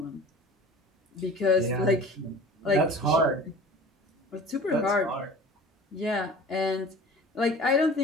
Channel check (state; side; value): normal; both; correlation 0.41